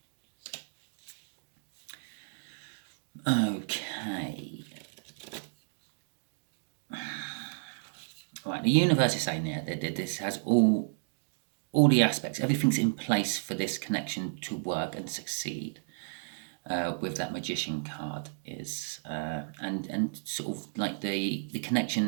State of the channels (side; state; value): left; silent; digital silence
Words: Right, the universe is saying there that this has all all the aspects, everything's in place for this connection to work and succeed. With that magician card is and sort of like the